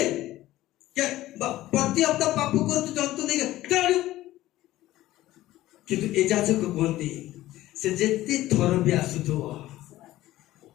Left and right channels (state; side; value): quieter; right; 15.7 dB